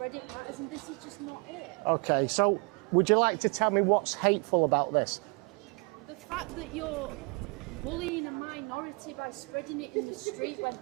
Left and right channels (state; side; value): quieter; left; 31.8 dB